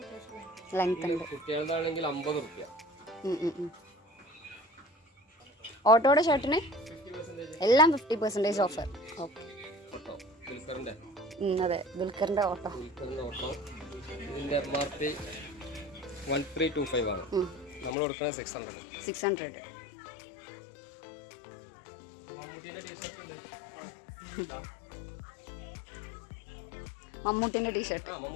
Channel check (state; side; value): drops out; right; at 17.9 s